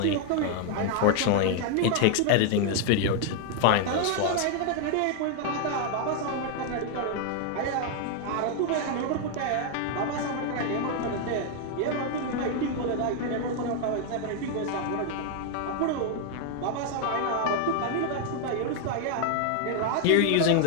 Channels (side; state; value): both; different; correlation 0.00